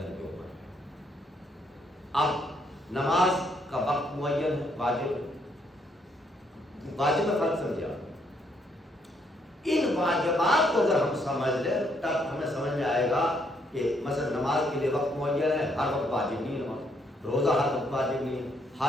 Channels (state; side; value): normal; both; correlation 0.72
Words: کے اوپر ہے۔ اب نماز کا وقت معین ہے، واجب میں فرق سمجھا۔ ان واجبات کو اگر ہم سمجھ لیں تب ہمیں سمجھ میں آئے گا کہ مثلا نماز کے لیے وقت معین ہے، ہر وقت واجب نہیں ہے نماز، روزہ ہر وقت واجب نہیں ہے،